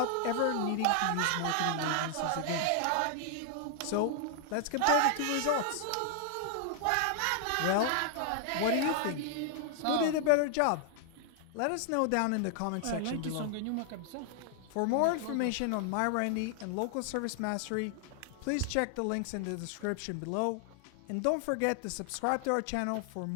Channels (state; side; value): different; both; correlation 0.00